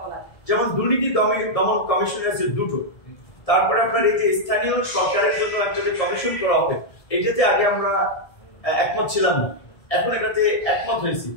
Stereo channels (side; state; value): right; late; 1.7 ms